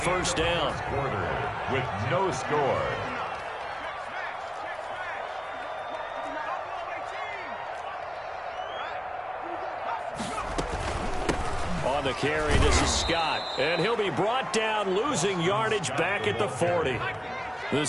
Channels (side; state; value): both; identical; correlation 1.00